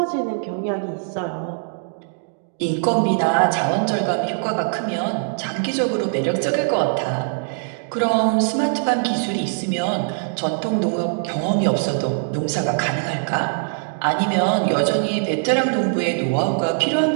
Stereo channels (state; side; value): silent; left; digital silence